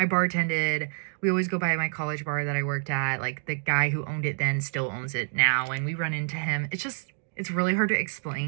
bartended. We always go by my college bar that I worked at. Like the guy who owned it then still owns it now, and we run into him. It's really hard to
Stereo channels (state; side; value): silent; left; digital silence